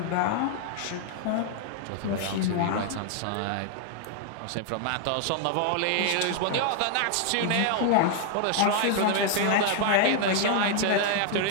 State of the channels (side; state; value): both; different; correlation 0.00